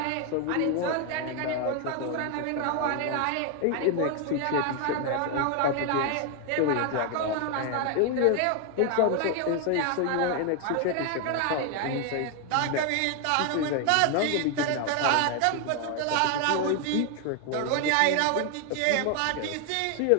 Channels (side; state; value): both; different; correlation 0.01